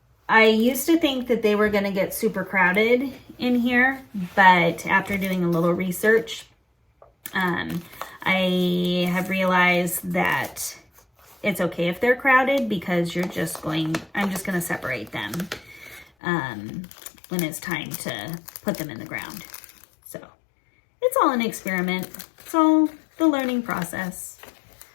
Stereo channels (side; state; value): right; drops out; at 16.1 s